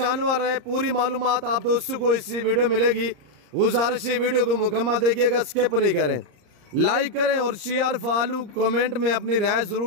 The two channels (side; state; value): left; late; 34 ms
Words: हैं, पूरी मालूमात आप दोस्तों को इस वीडियो मिलेगी। गुजारिश है वीडियो को मुकम्मल देखिएगा, स्किप नहीं करें, लाइक करें और शेयर फॉलो कमेंट में अपनी राय